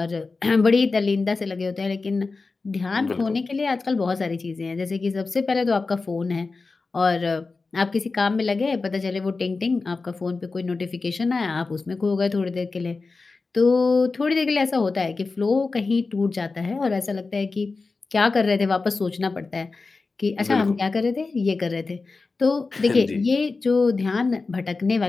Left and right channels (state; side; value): quieter; right; 4.0 dB